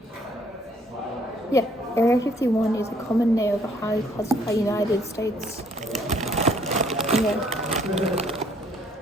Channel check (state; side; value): normal; both; correlation 0.64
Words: Yeah, Area 51 is a common name of a highly classified United States. Yeah.